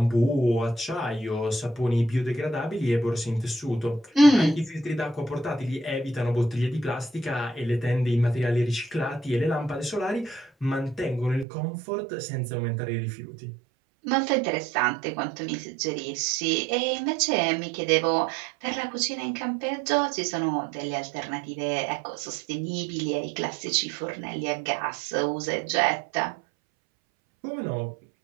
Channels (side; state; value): left; drops out; at 11.5 s